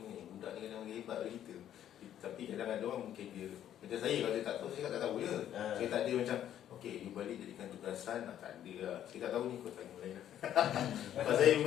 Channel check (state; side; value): quieter; right; 10.9 dB